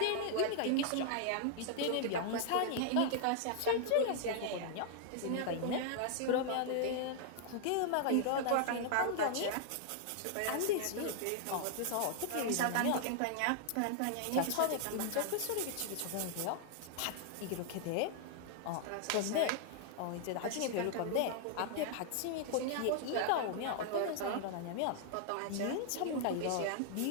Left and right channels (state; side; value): different; both; correlation -0.01